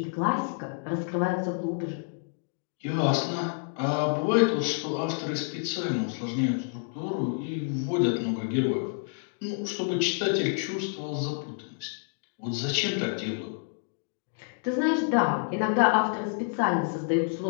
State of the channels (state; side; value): silent; right; 59 dB below the other